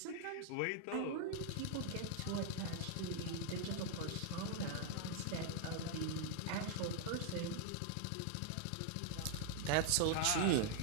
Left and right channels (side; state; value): both; different; correlation 0.00